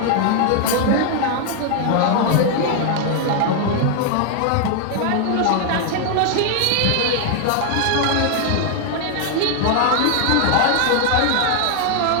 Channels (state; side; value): different; both; correlation 0.00